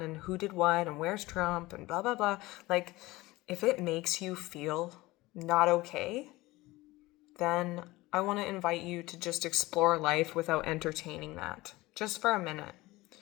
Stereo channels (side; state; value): right; quieter; 19.8 dB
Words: and who did what and where's Trump and blah, blah, blah, like if it makes you feel not okay, then I want to invite you to just explore life without entertaining that just for a minute.